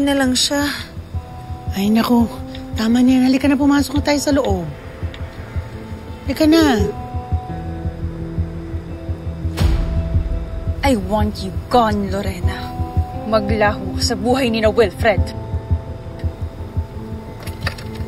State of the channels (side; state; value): both; identical; correlation 1.00